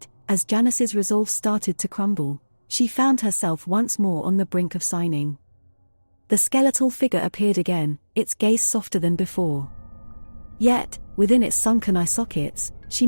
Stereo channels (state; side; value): inverted; both; correlation -1.00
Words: as Janice's resolve started to crumble, she found herself once more on the brink of signing. The skeletal figure appeared again, its gaze softer than before. Yet, within its sunken eye sockets, she